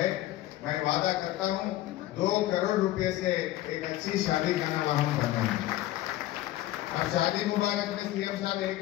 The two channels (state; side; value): quieter; right; 15.1 dB